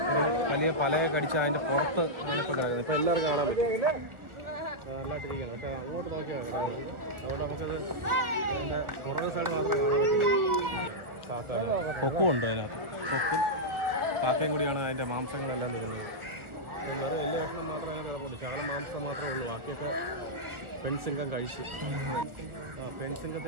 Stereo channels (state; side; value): late; left; 1.4 ms